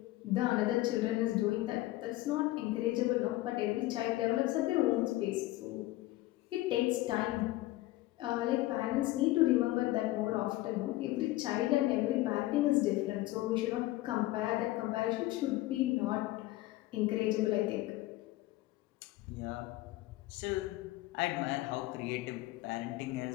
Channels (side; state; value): right; quieter; 17.5 dB